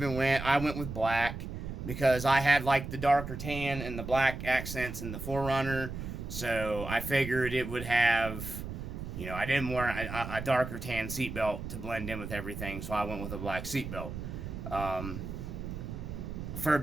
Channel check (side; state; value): right; noise; rumble, 7 dB below the sound